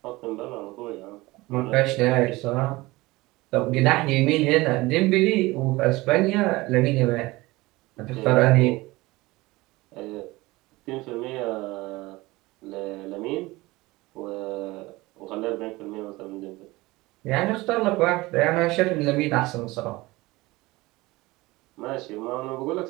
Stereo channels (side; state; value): left; quieter; 20.8 dB